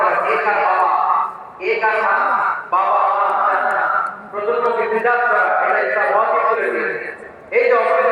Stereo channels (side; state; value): both; identical; correlation 1.00